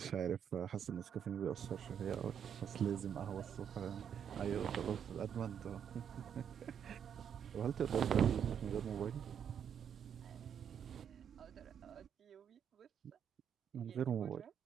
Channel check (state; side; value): quieter; left; 8.3 dB